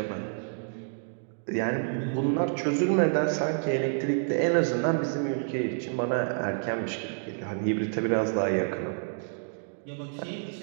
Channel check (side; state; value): left; silent; digital silence